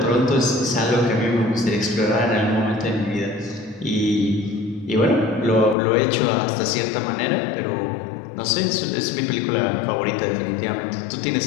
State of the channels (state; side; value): drops out; right; at 5.8 s